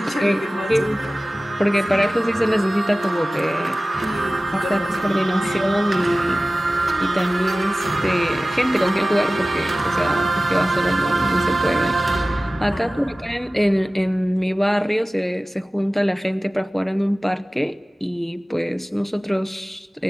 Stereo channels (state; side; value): normal; both; correlation 0.97